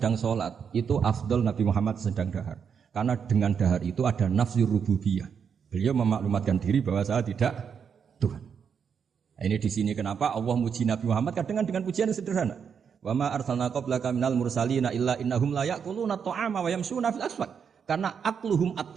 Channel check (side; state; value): left; quieter; 7.0 dB